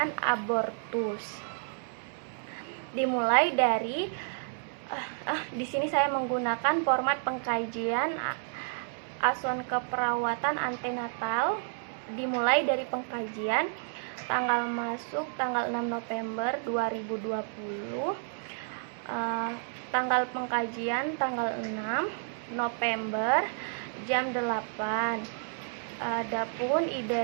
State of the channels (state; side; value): silent; left; 57 dB below the other